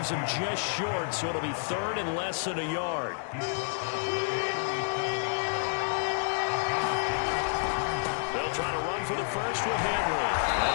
him just short, so it'll be 3rd and less than a yard. They'll They'll try to run for the first with Henry.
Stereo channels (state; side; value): silent; right; 58 dB below the other